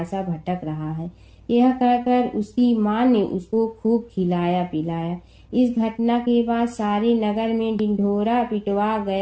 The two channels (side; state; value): both; identical; correlation 1.00